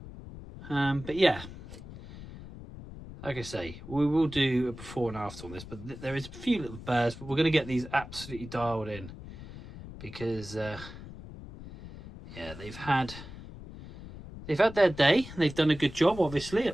But yeah. Like I say, we will do a before and after on this, but there is a few little burrs, but we're going to get these absolutely dialed in, because yeah, they've had their day. They've done a good job, obviously,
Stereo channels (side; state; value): left; noise; rumble, 14 dB below the sound